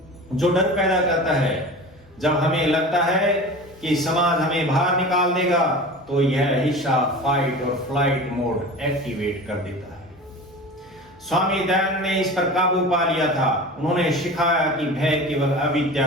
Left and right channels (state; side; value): normal; both; correlation 0.35